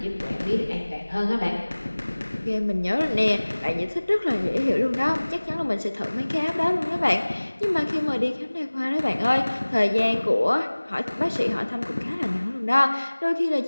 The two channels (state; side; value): inverted; both; correlation -1.00